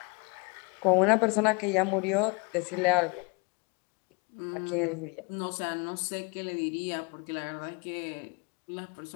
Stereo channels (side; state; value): right; quieter; 31.0 dB